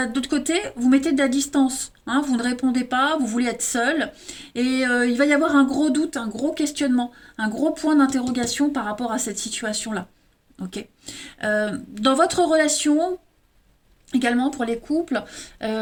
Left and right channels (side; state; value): both; identical; correlation 1.00